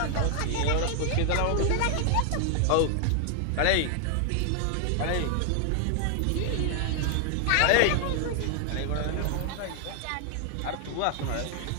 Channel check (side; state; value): both; different; correlation 0.00